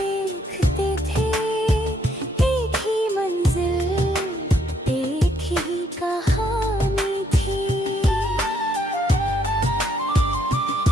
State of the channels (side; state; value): both; normal; correlation 0.70